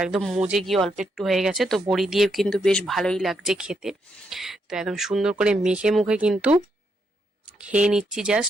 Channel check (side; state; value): both; normal; correlation 0.79